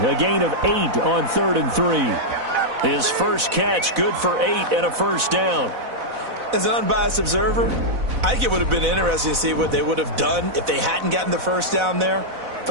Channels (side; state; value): left; late; 4.0 ms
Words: A gain of 8 on 3rd and 3. His first catch, good for 8 and a first down. As an unbiased observer, I think it would have been interesting to see what they would have done if they hadn't gotten the first down there.